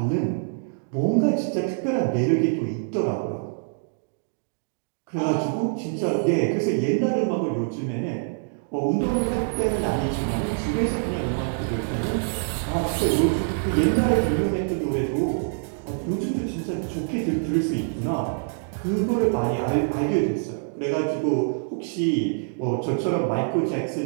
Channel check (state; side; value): silent; left; digital silence